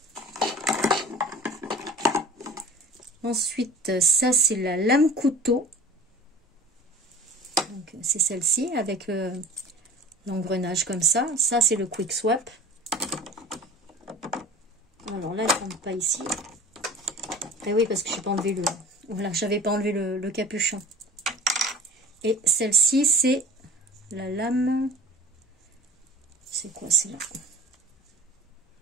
Ensuite, ça, c'est la lame couteau. Donc, c'est celle-ci avec l'engrenage comme ça. Ça, c'est le quick swap. Alors là, elle ne tombe pas ici. Et oui, parce que je n'ai pas enlevé le... Voilà, j'avais pas enlevé le capuchon. Et celle-ci, c'est la lame... C'est quoi, c'est là?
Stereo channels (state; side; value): normal; both; correlation 0.41